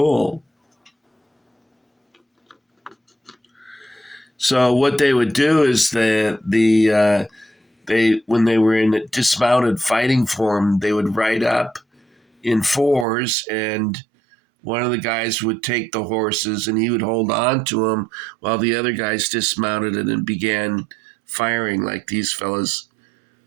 So what they would do is they when they were in dismounted fighting form, they would ride up in fours, and one of the guys would take the horses and he would hold on to them while the other guys dismounted and began firing like these fellas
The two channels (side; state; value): left; drops out; at 13.1 s